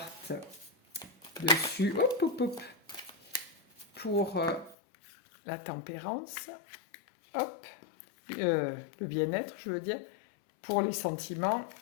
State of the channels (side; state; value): right; drops out; at 4.8 s